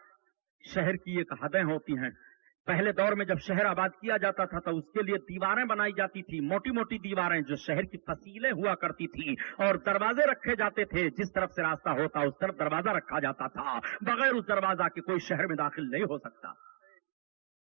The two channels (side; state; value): left; silent; 56 dB below the other